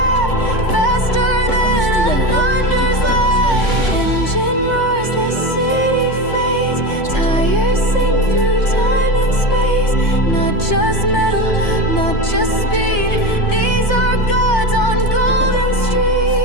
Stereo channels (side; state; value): right; late; 3.3 ms